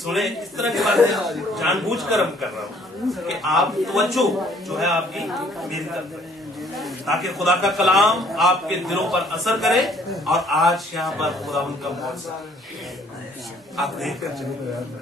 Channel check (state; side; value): normal; both; correlation 0.61